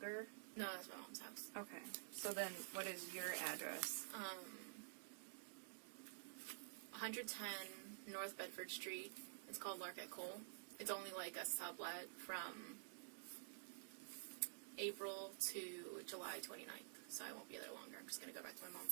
No, that's my mom's house. Okay. So then, what is your address? 110 North Bedford Street. It's called Larket Cole. It's only like a sublet from April to July 29th, so I won't be there longer. I'm just going to go back to my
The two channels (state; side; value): silent; left; digital silence